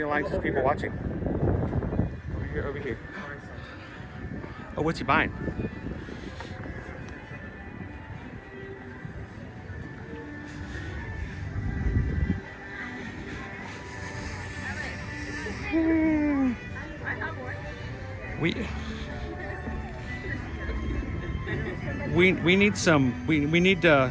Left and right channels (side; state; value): both; identical; correlation 1.00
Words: likes as people watching. Over here. Oh, what's he buying? We need some we